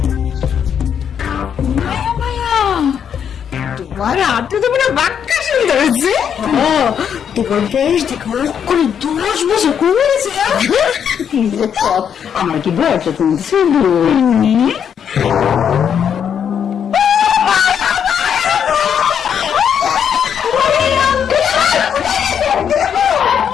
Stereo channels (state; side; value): quieter; right; 8.1 dB